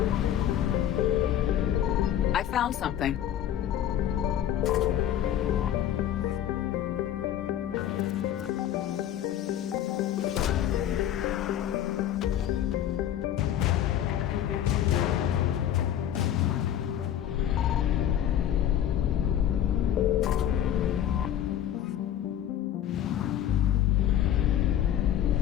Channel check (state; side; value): quieter; right; 11.0 dB